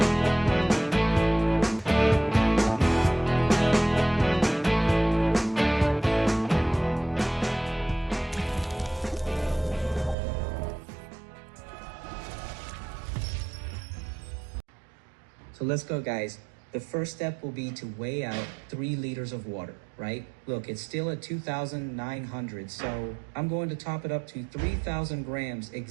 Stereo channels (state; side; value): drops out; left; at 10.2 s